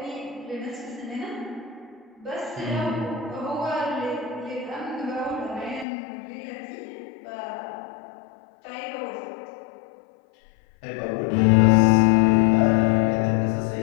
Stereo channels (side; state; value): right; drops out; at 5.9 s